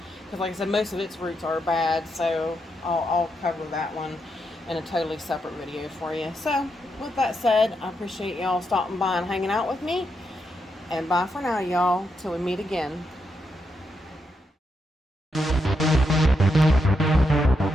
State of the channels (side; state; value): both; normal; correlation 0.82